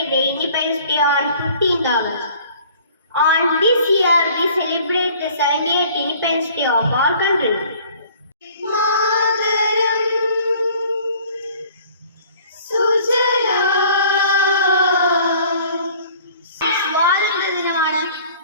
the Independence Day on 15th August. On this year, we celebrate the 78th Independence Day of our country. സ്വാതന്ത്ര്യ ദിനമാണ്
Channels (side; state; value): both; inverted; correlation -0.52